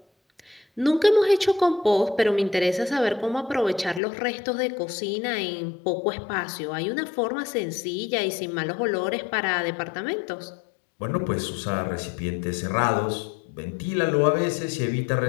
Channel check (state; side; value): drops out; right; at 4.0 s